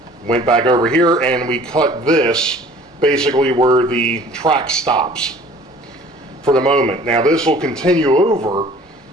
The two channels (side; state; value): both; normal; correlation 0.50